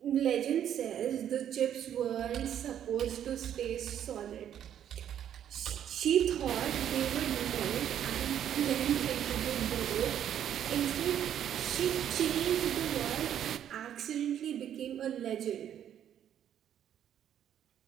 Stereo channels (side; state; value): left; quieter; 10.1 dB